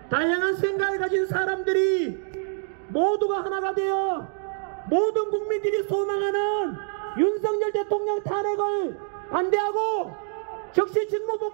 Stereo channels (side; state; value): left; silent; 57 dB below the other